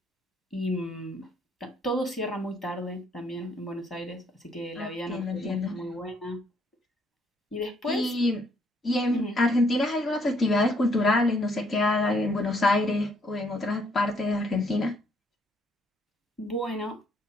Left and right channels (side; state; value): both; normal; correlation 0.68